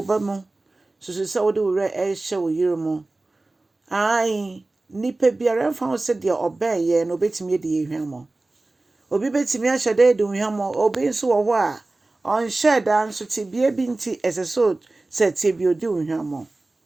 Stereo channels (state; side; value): quieter; left; 3.1 dB